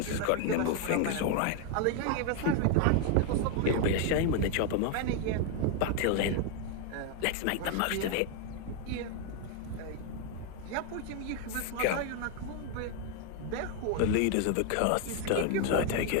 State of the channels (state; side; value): different; both; correlation 0.01